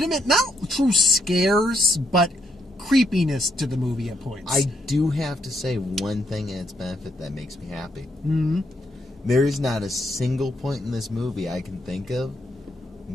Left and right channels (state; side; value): normal; both; correlation 0.75